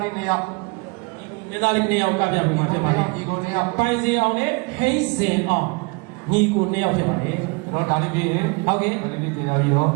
လေးနှစ်ယောက်မင်းသားလေးနှစ်ယောက်ကပြမှုမှာဖြစ်ပါတယ်ညီကိုနှစ်ယောက်ပိုင်စီအောင်နဲ့ဟိစင်အောင်ညီကိုနှစ်ယောက်ဖြစ်ပါတယ်ကျွန်တော်ဒါလေးပြီးရင်ဟုတ်ကဲ့ဒါလေးပြီးကြပြီးတော့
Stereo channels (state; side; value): quieter; left; 29.2 dB